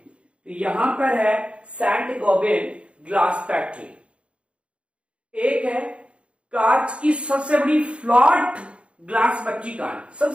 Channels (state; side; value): late; left; 0.060 ms